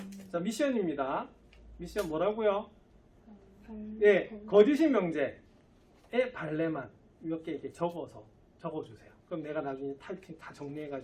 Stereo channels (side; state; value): both; identical; correlation 1.00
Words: 자, 미션입니다. 미션 뭐라고요? 예, 거짓인 명제의 발레만 몇 개 이렇게 적어주세요. 그럼 내가 나중에 타이핑 다